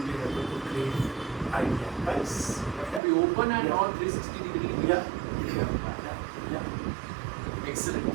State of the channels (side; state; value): left; drops out; at 3.0 s